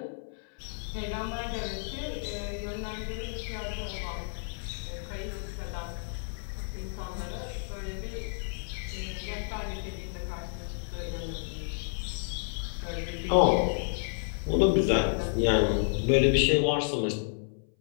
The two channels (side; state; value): right; silent; 57 dB below the other